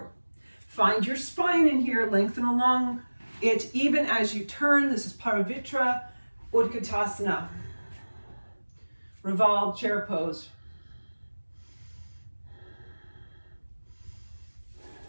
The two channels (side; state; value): both; inverted; correlation -1.00